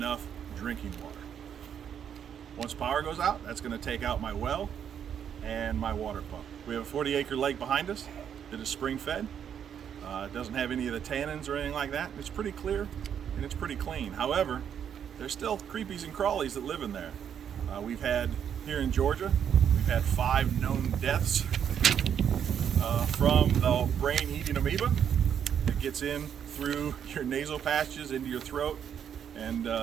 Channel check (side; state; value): left; quieter; 8.5 dB